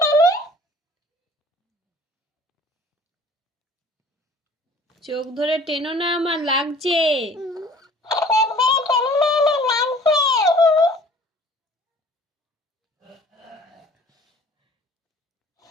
চোখ ধরে টেনো না, আমার লাগছে।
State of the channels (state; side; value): normal; both; correlation 0.50